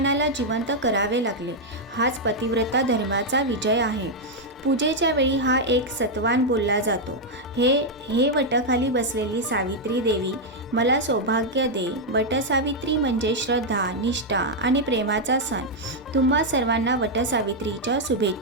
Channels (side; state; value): both; normal; correlation -0.01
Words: जिवंत करावे लागले. हाच पतिव्रता धर्माचा विजय आहे. पूजेच्या वेळी हा एक सत्वान बोलला जातो. हे वटाखाली बसलेली सावित्री देवी, मला सौभाग्य दे. वटसावित्री म्हणजे श्रद्धा, निष्ठा आणि प्रेमाचा सण. तुम्हा सर्वांना वटसावित्रीच्या